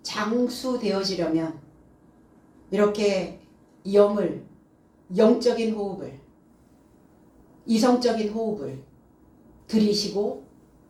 장수되어지려면 이렇게 영적인 호흡을, 이성적인 호흡을 들이쉬고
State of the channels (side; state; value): both; identical; correlation 1.00